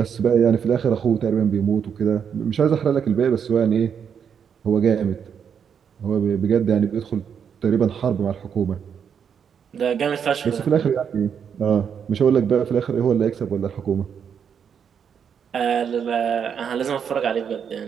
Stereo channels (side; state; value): left; quieter; 7.5 dB